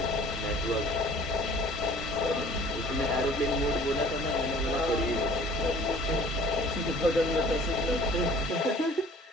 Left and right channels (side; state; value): both; normal; correlation 0.50